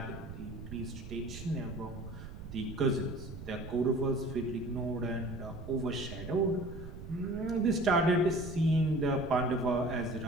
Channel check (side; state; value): right; noise; rumble, 11 dB below the sound